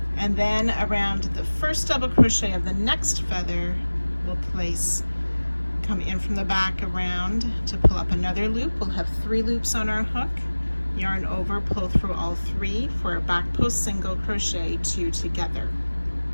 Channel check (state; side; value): inverted; both; correlation -1.00